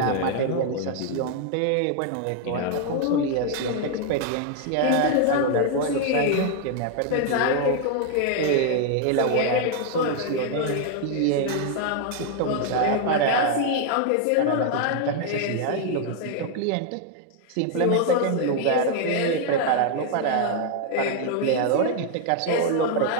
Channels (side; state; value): both; different; correlation 0.00